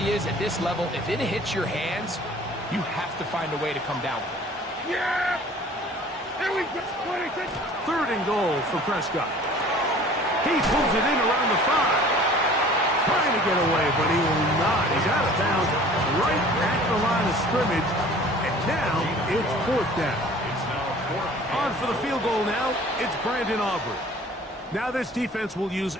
is at this level, if it hits your hands, you have to find a way to come down with it. Yeah! Here we go! 26! 3rd and goal for Prescott. He pulls it in around the 5. Trying to get away, but he will not. He's out of bounds right at the line of scrimmage. And now it's 4th down. On for the field goal now, it's Brandon Aubrey. Now this defense will use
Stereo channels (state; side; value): normal; both; correlation 0.48